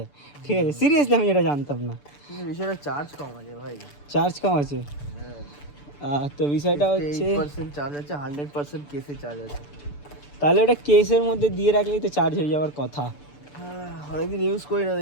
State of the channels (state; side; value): late; right; 6.9 ms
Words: ঠিক আছে। সিরিয়াসলি আমি এটা জানতাম না। বিষয়টা চার্জ কম আছে ভাই। চার্জ কম আছে। হ্যাঁ, তো বিষয়টা হচ্ছে 8% চার্জ আছে, 100% কেসে চার্জ আছে। তাহলে ওটা কেসের মধ্যে দিয়ে রাখলেই তো চার্জ হয়ে যাওয়ার কথা। হ্যাঁ, অনেকদিন ইউজ করি না,